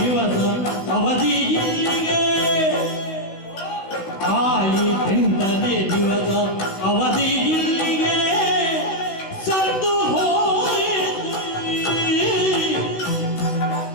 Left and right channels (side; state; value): right; late; 16 ms